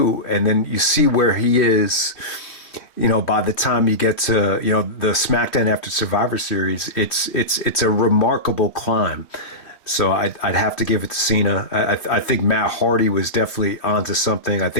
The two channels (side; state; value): right; late; 2.8 ms